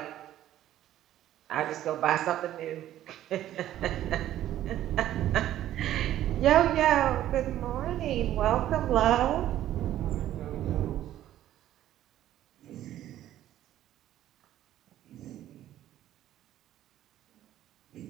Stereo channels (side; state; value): left; quieter; 12.7 dB